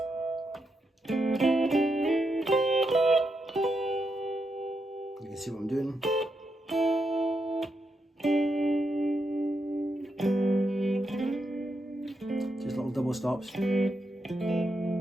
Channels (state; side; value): normal; both; correlation 0.83